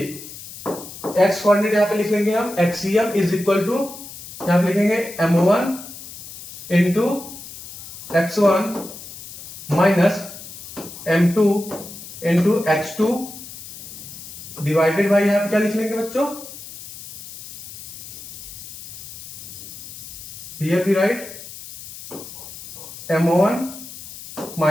x कोऑर्डिनेट यहाँ पे लिख लेंगे हम, XCM इज इक्वल टू, यहाँ पे लिखेंगे M1 into X1 minus M2 into X2 divided by, यहाँ पे क्या लिख लेंगे बच्चों, here we write M1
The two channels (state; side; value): noise; left; hiss, 13 dB below the sound